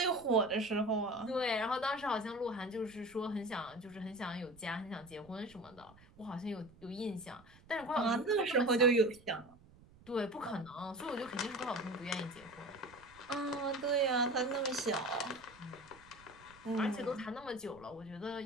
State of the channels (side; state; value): right; noise; rumble, 24 dB below the sound